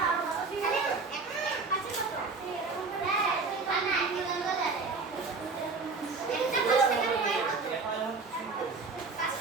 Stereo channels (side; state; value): left; quieter; 4.2 dB